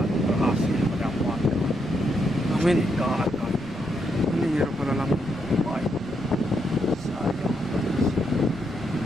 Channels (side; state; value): left; noise; rumble, 21 dB below the sound